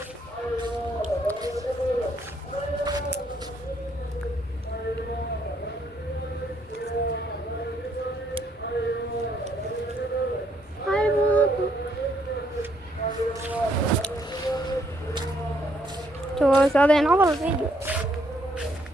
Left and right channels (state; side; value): normal; both; correlation 0.70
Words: شوف هذا ينعرض الفيديو